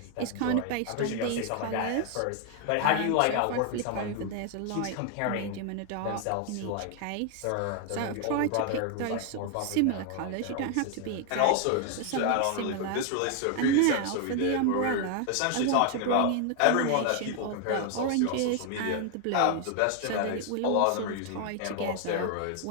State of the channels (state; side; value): different; both; correlation 0.00